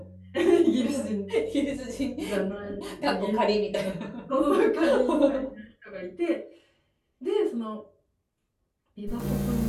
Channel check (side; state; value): both; identical; correlation 1.00